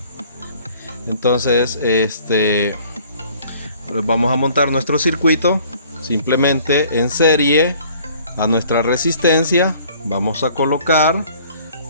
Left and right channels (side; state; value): both; inverted; correlation -0.55